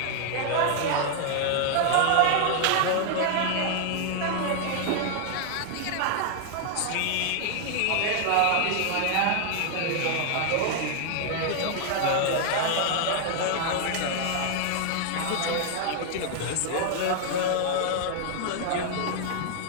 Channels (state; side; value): different; both; correlation 0.00